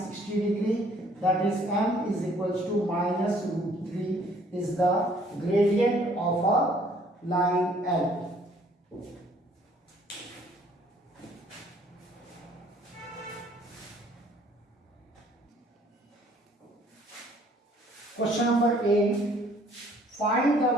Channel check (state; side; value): normal; both; correlation 0.60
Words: degree, that is m is equals to minus root 3 is the gradient of a line L. Question number 8. Find